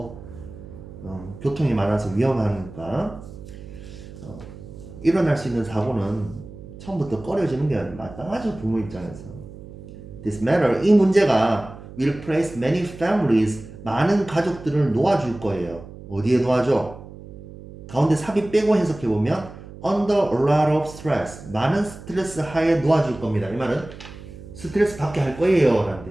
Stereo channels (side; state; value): right; noise; hum, 16 dB below the sound